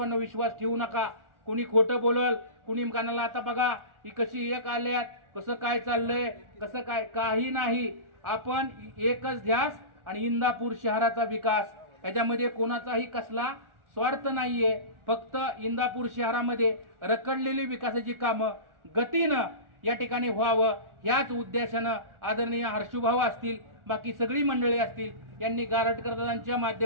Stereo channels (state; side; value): late; left; 1.4 ms